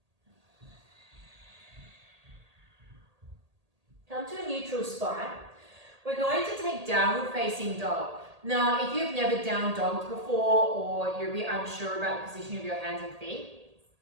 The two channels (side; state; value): left; late; 1.8 ms